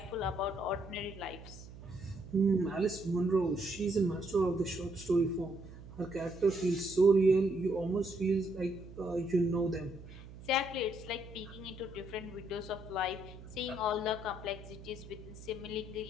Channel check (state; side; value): noise; right; hum, 16 dB below the sound